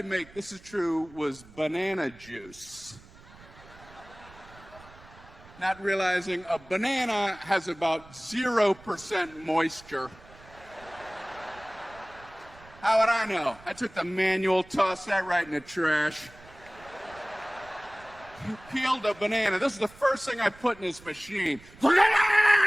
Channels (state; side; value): noise; right; rumble, 22 dB below the sound